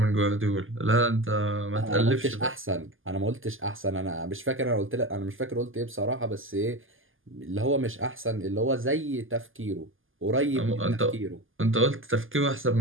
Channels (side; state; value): left; late; 0.59 ms